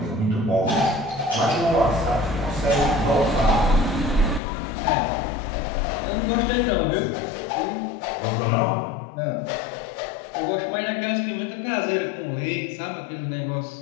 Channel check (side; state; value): right; drops out; at 4.4 s